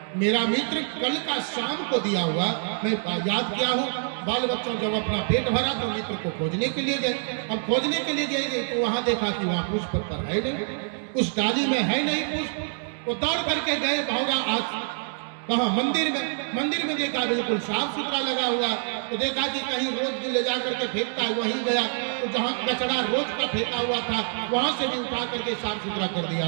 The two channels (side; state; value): left; silent; digital silence